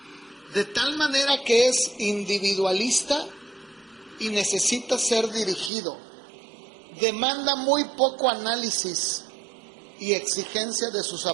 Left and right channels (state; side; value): drops out; left; at 5.7 s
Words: de tal manera que es individualista y necesita ser dirigido. Demanda muy poco análisis y exigencia de sus